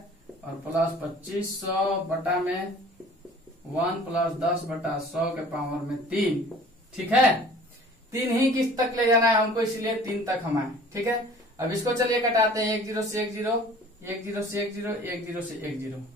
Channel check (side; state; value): both; normal; correlation 0.48